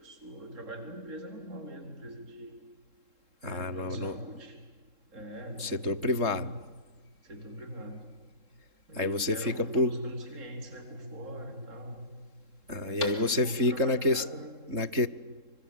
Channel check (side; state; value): left; late; 3.7 ms